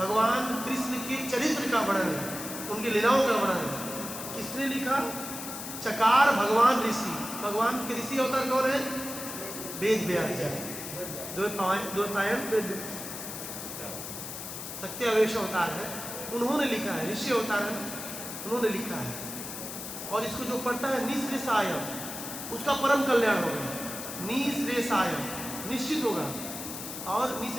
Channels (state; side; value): noise; left; hiss, 8 dB below the sound